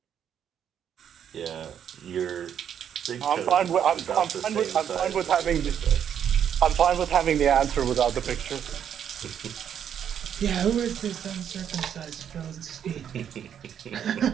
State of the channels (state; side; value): quieter; left; 8.9 dB